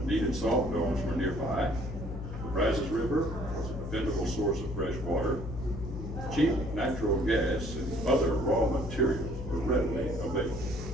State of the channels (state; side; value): noise; left; hum, 7 dB below the sound